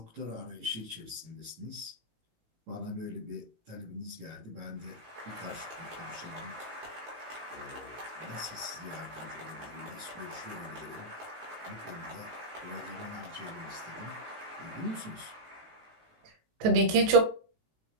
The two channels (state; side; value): late; left; 19 ms